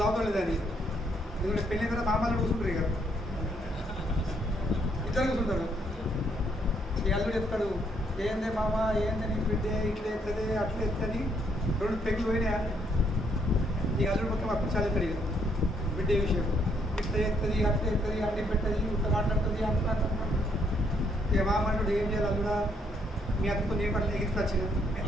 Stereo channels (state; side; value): normal; both; correlation 0.71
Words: దావుతలేదని. ఎందుకంటే పెళ్ళి కదా మామలు కూర్చుంటారు, ఇక ఇద్దరు కూర్చుంటారు. ఈ అల్లుడు చెప్తాడు, ఏందే మామ ఏందని బిడ్డే ఇట్లా ఎత్తది అట్లా ఎత్తని, రెండు పెగ్గులు పోయినాయా. ఈ అల్లుడు మొత్తం అప్పుడు చాలా ఎత్తాడు, ఇక బిడ్డే విషయం ఇట్లా ఎత్తది అట్లా ఎత్తది అడ్డి పెట్టది ఇట్లా మాట్లాడుతుంది అట్లా. ఇక మామ అంటాడు, ఏం చేయాలి అల్లుడా, మీ అత్తతో నేను పట్ల ఎగించుకొచ్చిన,